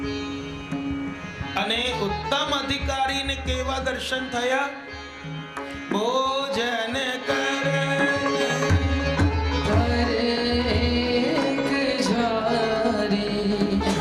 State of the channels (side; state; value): both; identical; correlation 1.00